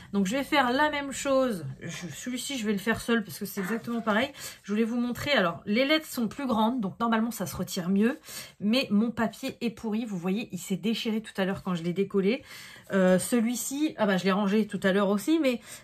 Donc je vais faire la même chose. Celui-ci, je vais le faire seul parce que c'est exactement pareil. Je voulais vous montrer. Alors, les lettres sont plus grandes. Donc normalement, ça se retire mieux. Mais mon papier est pourri. Vous voyez, il s'est déchiré tout à l'heure quand je l'ai décollé. Celui-ci, ah bah je l'ai rangé tout à l'heure aussi. Mais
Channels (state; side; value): identical; both; correlation 1.00